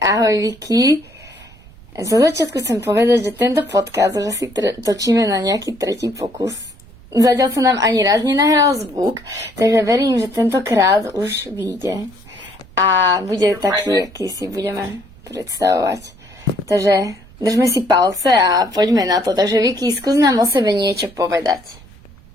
ahoj Vicky. Za začiatku chcem povedať, že tento podcast už asi točíme na nejaký tretí pokus. Zatiaľ sa nám ani raz nenahral zvuk, takže verím, že tentokrát už vyjde. A bude taký, aký si budeme predstavovať. Takže držme si palce a poďme na to. Takže Vicky, skús nám o sebe niečo povedať.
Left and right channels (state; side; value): noise; right; rumble, 23 dB below the sound